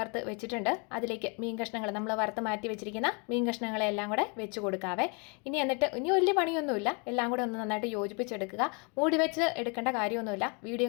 വെച്ചിട്ടുണ്ട്. അതിലേക്ക് മീൻ കഷ്ണങ്ങൾ നമ്മൾ വറുത്ത് മാറ്റി വെച്ചിരിക്കുന്ന മീൻ കഷ്ണങ്ങളെല്ലാം കൂടെ വെച്ച് കൊടുക്കാവേ. ഇനി വലിയ പണിയൊന്നുമില്ല, എല്ലാം കൂടെ ഒന്ന് നന്നായിട്ട് യോജിപ്പിച്ചെടുക്കുക. മൂടി വെച്ച് എടുക്കേണ്ട കാര്യമൊന്നുമില്ല. വീഡിയോ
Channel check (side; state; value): right; quieter; 34.0 dB